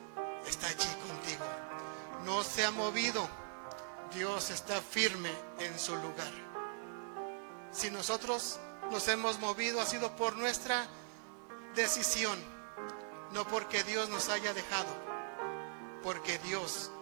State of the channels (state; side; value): silent; left; 51 dB below the other